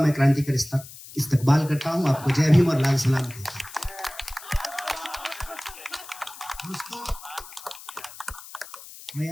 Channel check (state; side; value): noise; left; hiss, 16 dB below the sound